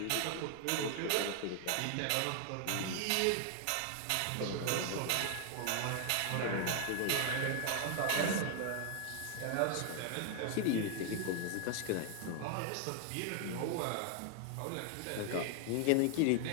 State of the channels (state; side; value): different; both; correlation 0.00